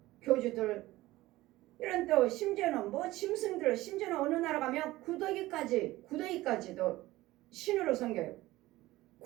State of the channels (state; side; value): quieter; left; 17.7 dB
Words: 교주들 이런 또 심지어는 뭐 짐승들 심지어는 어느 나라 가면 구더기까지도 신으로 섬겨요.